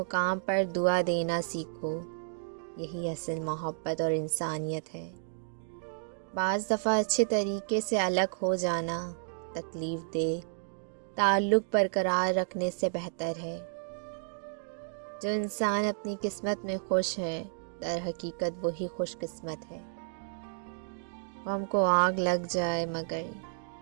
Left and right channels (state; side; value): silent; left; digital silence